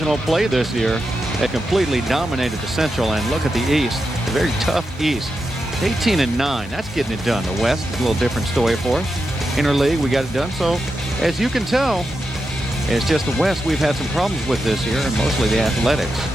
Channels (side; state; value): both; normal; correlation 0.87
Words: play this year, they completely dominated the Central. And look at the East, a very tough East. 18-9. That's getting it done. The West is a little different story for us. Interleague, we got it done. So, as you can tell, it's just the West we've had some problems with this year, and mostly the Athletics.